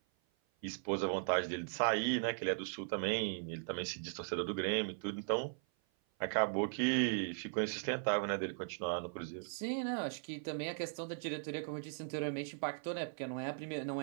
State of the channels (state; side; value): silent; left; 52 dB below the other